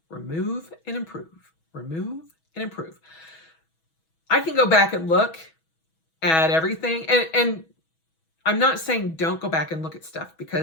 Remove and improve. Remove and improve. I can go back and look at everything, and I'm not saying don't go back and look at stuff,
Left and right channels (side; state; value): right; late; 6.1 ms